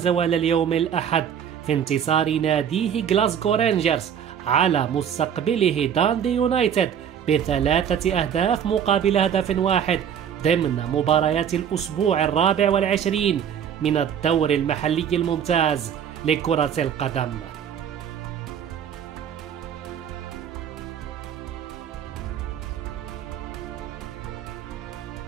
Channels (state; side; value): quieter; left; 8.5 dB